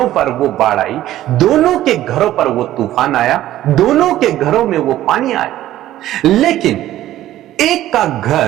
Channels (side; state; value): left; quieter; 13.8 dB